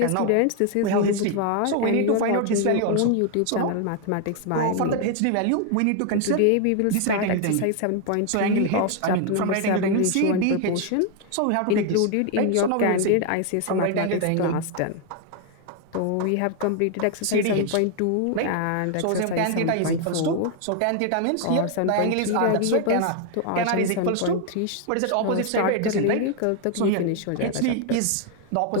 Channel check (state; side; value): different; both; correlation 0.01